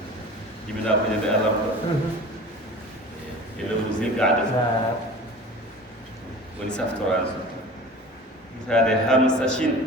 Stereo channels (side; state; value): both; normal; correlation 0.39